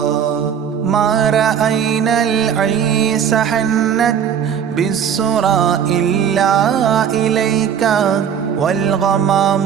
ما رأينا العيس حنت بالسرى إلا إليك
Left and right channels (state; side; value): quieter; left; 8.3 dB